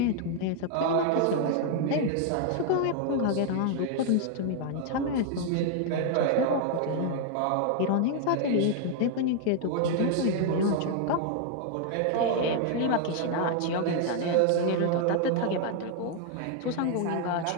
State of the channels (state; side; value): different; both; correlation 0.00